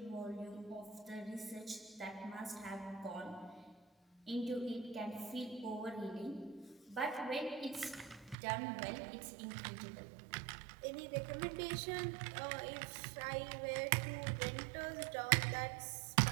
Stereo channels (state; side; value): drops out; left; at 8.3 s